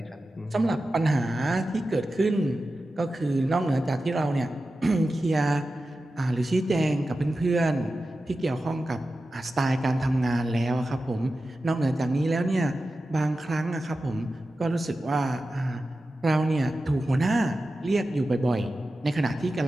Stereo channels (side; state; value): both; normal; correlation 0.93